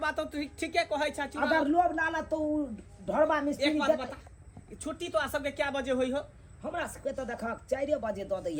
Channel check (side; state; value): both; identical; correlation 1.00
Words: तो ठीके कहै छ। अगर लोभ लाला तो ढोरबा मिस्त्री एक बात बता, छुट्टी तो आ सबके क्या बजे होई हो? हमरा सबके तो देखा 4 बजे द